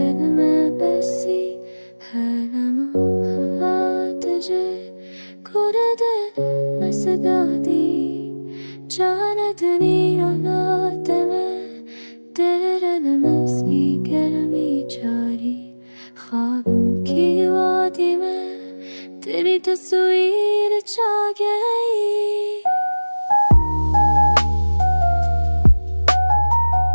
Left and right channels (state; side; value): inverted; both; correlation -1.00